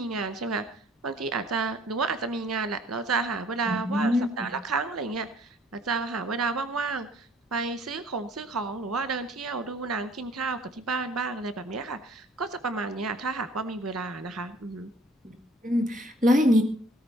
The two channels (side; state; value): both; normal; correlation 0.55